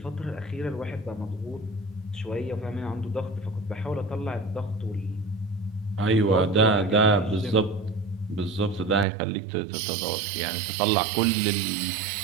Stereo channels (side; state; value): left; drops out; at 9.1 s